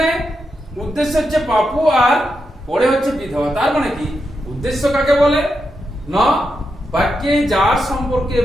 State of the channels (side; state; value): both; normal; correlation 0.85